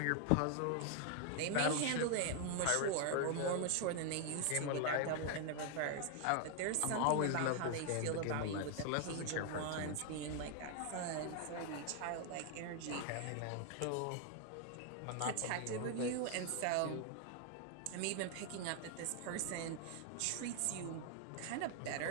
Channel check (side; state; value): both; different; correlation 0.00